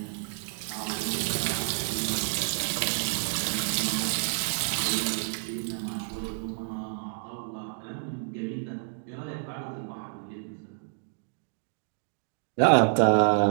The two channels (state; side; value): silent; left; digital silence